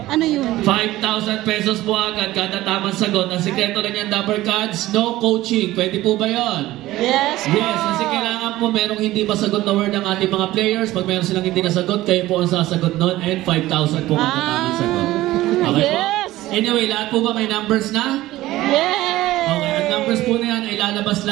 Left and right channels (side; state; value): left; quieter; 16.5 dB